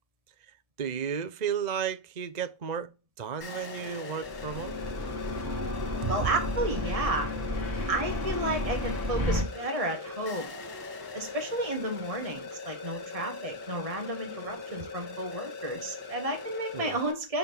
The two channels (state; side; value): late; left; 1.1 ms